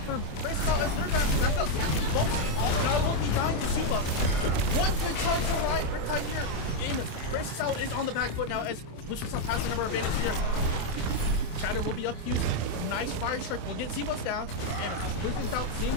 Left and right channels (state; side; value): late; right; 27 ms